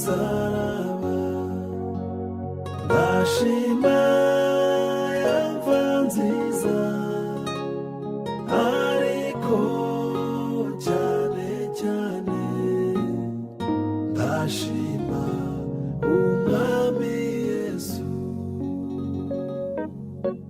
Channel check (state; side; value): identical; both; correlation 1.00